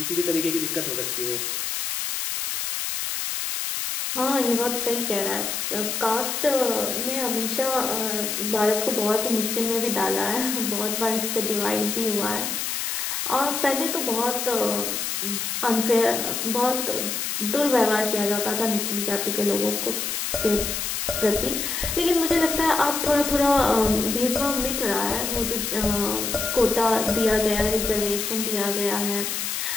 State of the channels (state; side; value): noise; left; hiss, 2 dB below the sound